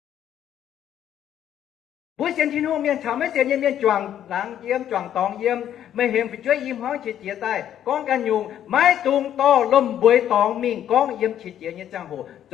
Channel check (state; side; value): quieter; right; 10.5 dB